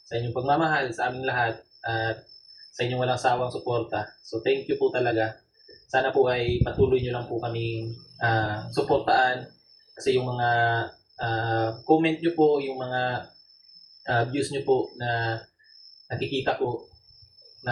sa inyong pagmamahal sa aming lahat at sa inyong walang sawang suporta. So thank you po talaga. Sana po ay patuloy nyo lang po kaming suportaan kasi yung mga comment nyo po, yung mga views nyo po na nakikita ko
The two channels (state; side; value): identical; both; correlation 1.00